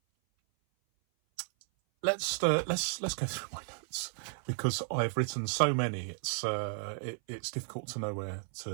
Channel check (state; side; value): silent; left; 55 dB below the other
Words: Let's go through my notes because I've written so many. It's difficult to know where